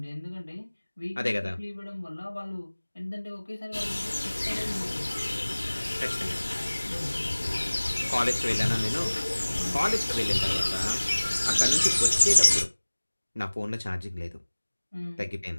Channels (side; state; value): both; inverted; correlation -1.00